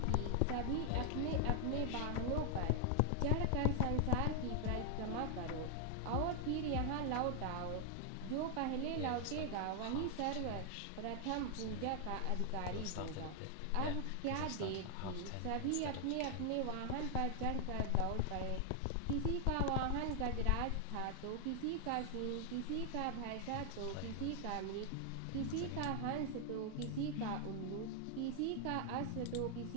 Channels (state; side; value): different; both; correlation 0.00